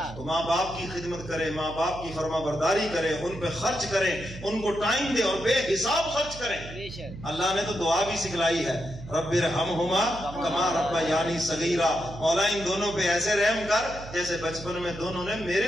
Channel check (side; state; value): right; noise; hum, 14 dB below the sound